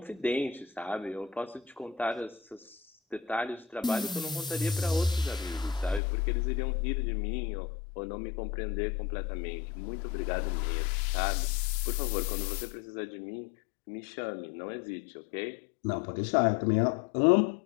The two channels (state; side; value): drops out; right; at 6.0 s